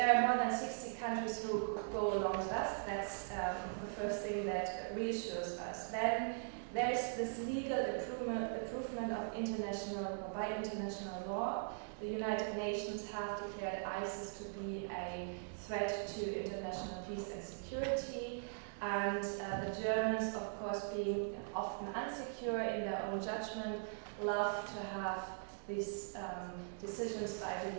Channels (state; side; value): silent; left; digital silence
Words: are more than 60 countries who go along with us. That's the first thing that reassures us. Then there's this legal improvement of by international law. The United Nations have declared ISIS to be a threat to international peace and security. And the Germans, of course, being often insecure in their own judgment, love to have these decisions by